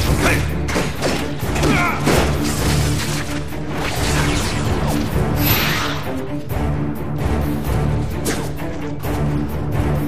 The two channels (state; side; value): identical; both; correlation 1.00